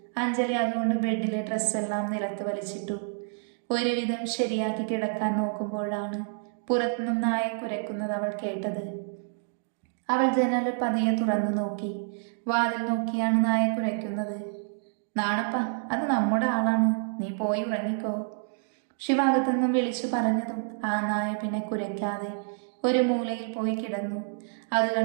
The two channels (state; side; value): silent; left; digital silence